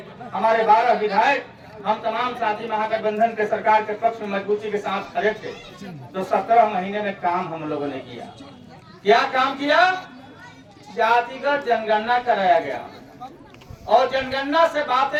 हमारे 12 विधायक, हम तमाम साथी महागठबंधन के सरकार के पक्ष में मजबूती के साथ खड़े थे। तो 17 महीने में काम हम लोगों ने किया। क्या काम किया? जातिगत जनगणना कराया गया और जनगणना से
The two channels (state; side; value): identical; both; correlation 1.00